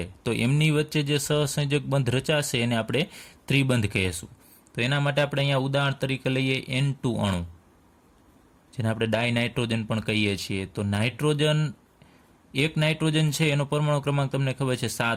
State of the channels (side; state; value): both; identical; correlation 1.00